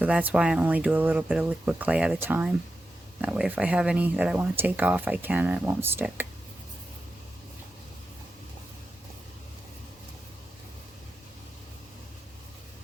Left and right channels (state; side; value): normal; both; correlation 0.90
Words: that's why I only do a little bit of liquid clay at a time. That way if I have any that I want to take off, I can and it won't stick.